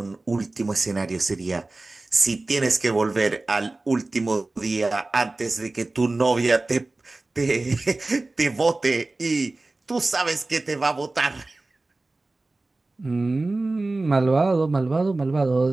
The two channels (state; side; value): quieter; left; 3.1 dB